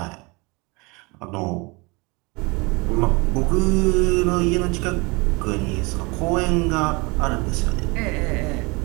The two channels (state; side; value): quieter; left; 27.0 dB